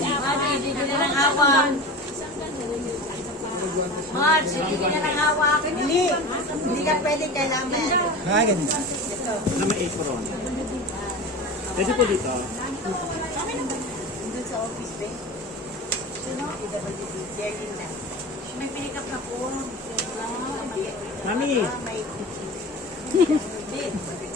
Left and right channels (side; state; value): both; normal; correlation 0.31